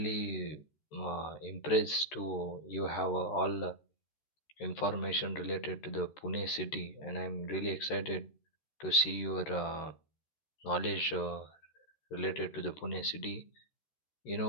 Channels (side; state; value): right; late; 13 ms